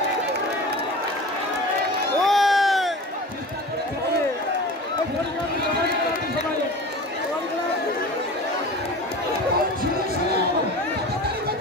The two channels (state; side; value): normal; both; correlation 0.35